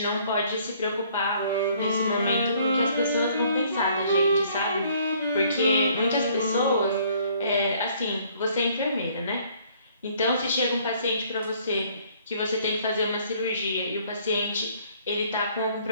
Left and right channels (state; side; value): inverted; both; correlation -0.61